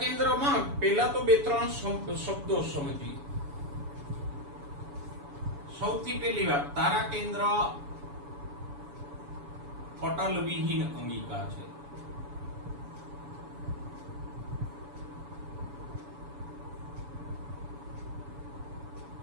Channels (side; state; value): left; late; 7.0 ms